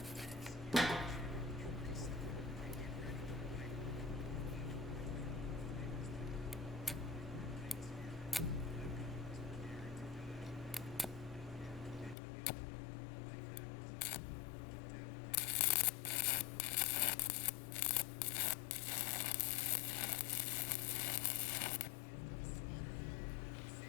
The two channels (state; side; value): drops out; right; at 12.2 s